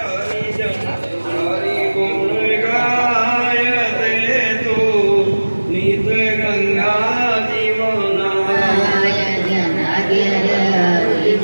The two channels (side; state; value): both; inverted; correlation -1.00